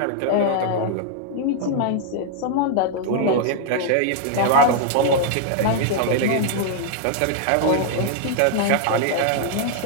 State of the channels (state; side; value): different; both; correlation -0.01